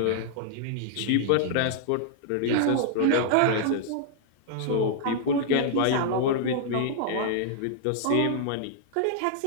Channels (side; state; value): both; different; correlation -0.01